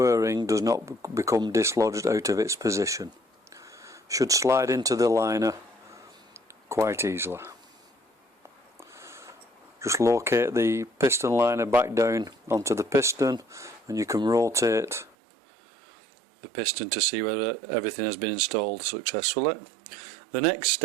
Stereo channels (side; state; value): left; drops out; at 15.2 s